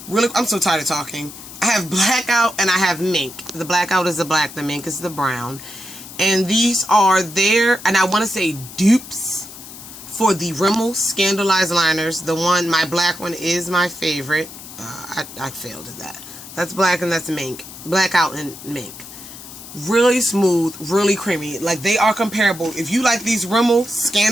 Really, I'm so tired of talking. I have blackout and I have mink. The blackout is the black, the mink is the brown. And these are their, and I want to say dupes for the Rimmel Scandalized liners. The one, my black one is my favorite. I failed at that. That's black and that's mink. Blackout and mink. Really smooth, really creamy. Like they are comparable. If you like these Rimmel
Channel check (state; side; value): noise; left; hiss, 15 dB below the sound